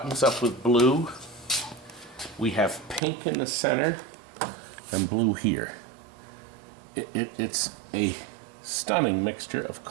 up with blue. We have pink in the center and blue here. It's a stunning mixture of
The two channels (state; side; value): drops out; left; at 3.0 s